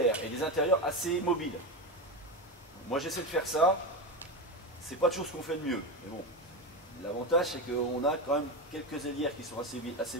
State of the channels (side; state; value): both; normal; correlation 0.17